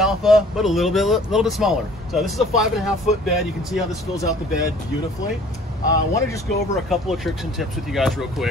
but a little bit smaller. So this is a 5.5 foot bed. You can see how this fills out the bed beautifully. I want to just go over a couple of tricks and tips with you guys real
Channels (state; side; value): normal; both; correlation 0.52